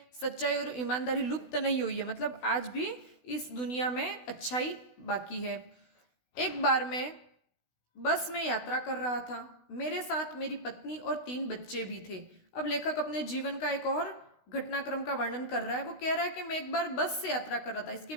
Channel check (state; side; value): late; right; 16 ms